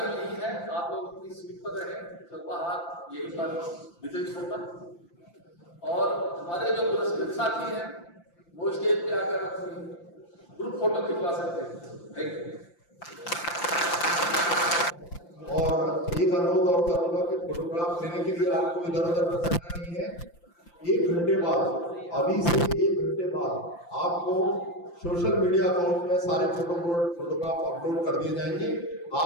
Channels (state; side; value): late; right; 5.8 ms